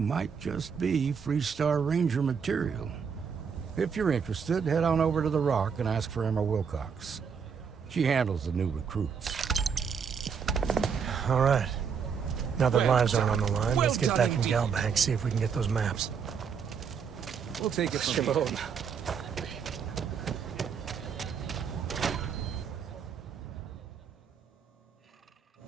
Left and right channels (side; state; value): left; quieter; 6.6 dB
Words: just be Freestar Ranger material. If you're interested, head on over to the Rock and ask for Emma Wilcox. She handles the new recruits. All right. Now that lives aren't on the line, Well let's get done back in indeed. Galbank, see if we can get those maps. We'll take it from here.